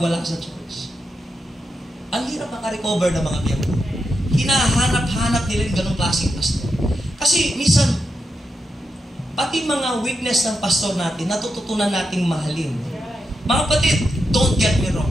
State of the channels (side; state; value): both; normal; correlation 0.86